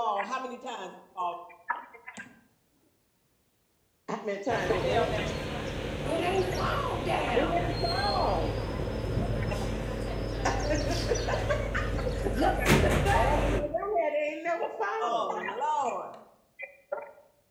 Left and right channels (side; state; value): both; identical; correlation 1.00